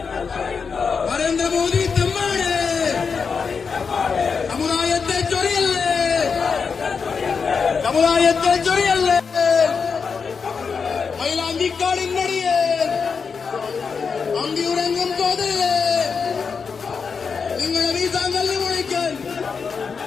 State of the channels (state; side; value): quieter; right; 5.6 dB